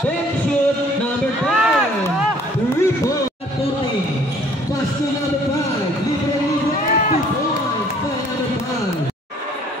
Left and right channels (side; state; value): both; normal; correlation 0.57